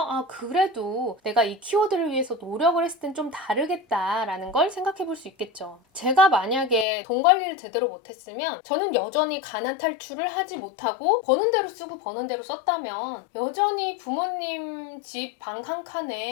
그래도 내가 이 키워드를 위해서 노력을 했을 땐 좀 다르겠다 라는 걸 생각해 볼 수 있겠죠. 제가 만약에 돈 관리를 제대로 못했으면 저는 여전히 가난 탈출을 하지 못하고 버는 대로 쓰고 버는 대로 썼다면 여전히 부모님 집 방 한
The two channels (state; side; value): drops out; right; at 6.9 s